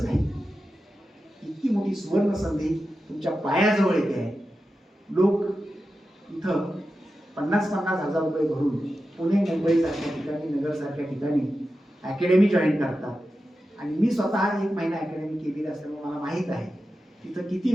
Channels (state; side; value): normal; both; correlation 0.92